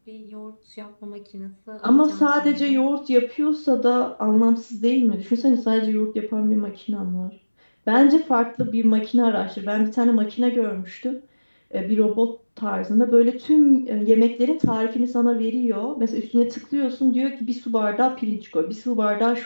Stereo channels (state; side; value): inverted; both; correlation -1.00